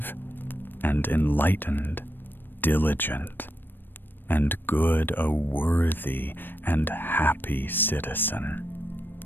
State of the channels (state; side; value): late; right; 0.095 ms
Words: and enlightened, diligent, and good, a worthy and happy citizen.